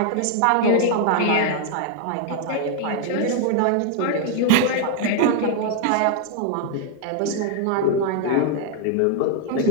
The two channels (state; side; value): different; both; correlation 0.00